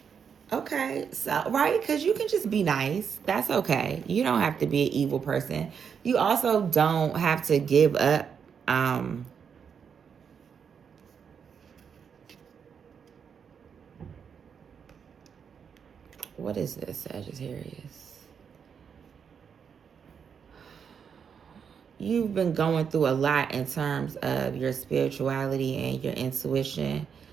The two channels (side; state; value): left; quieter; 6.9 dB